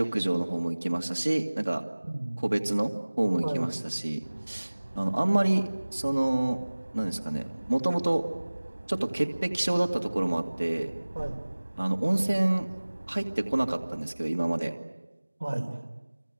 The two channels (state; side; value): inverted; both; correlation -1.00